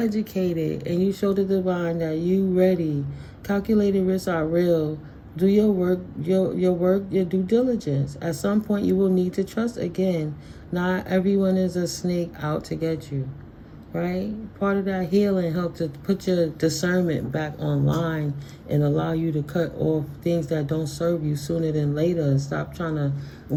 and you show the divine that you ready. Calculated risks are real. Do your work, your due diligence. At some point you will need to trust again. Not everyone is a snake out to get you. Right? Part of that healing helps to put your discernment back online and allow you to cut off things that don't serve you sooner than later, and stop trying to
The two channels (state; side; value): identical; both; correlation 1.00